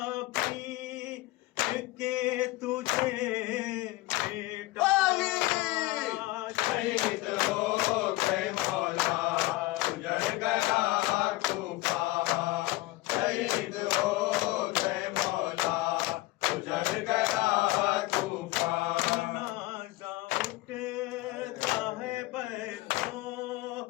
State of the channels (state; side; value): quieter; right; 19.4 dB